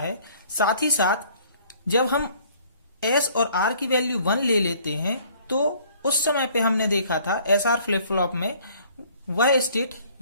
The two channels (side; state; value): both; inverted; correlation -0.57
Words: साथ ही साथ जब हम S और R की वैल्यू 1 ले लेते हैं तो उस समय पे हमने देखा था SR फ्लिप फ्लॉप में वह स्टेट